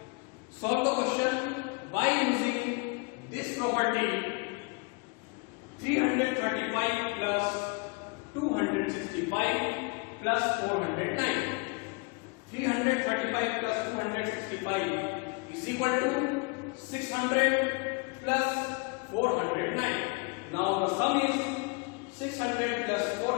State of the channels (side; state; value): right; quieter; 30.9 dB